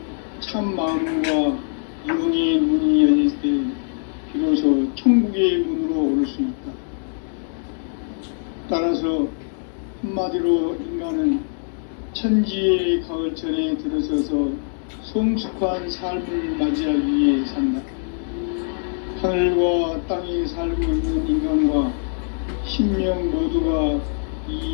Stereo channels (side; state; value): right; silent; 64 dB below the other